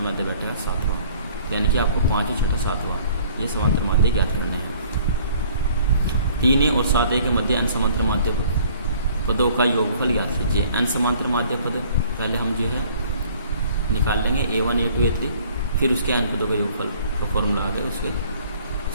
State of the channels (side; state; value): both; inverted; correlation -0.55